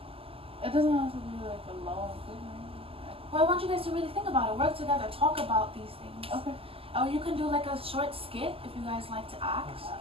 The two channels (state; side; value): late; left; 0.27 ms